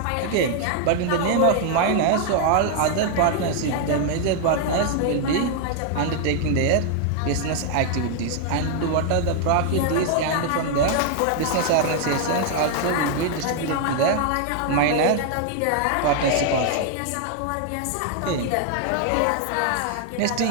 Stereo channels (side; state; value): both; different; correlation 0.00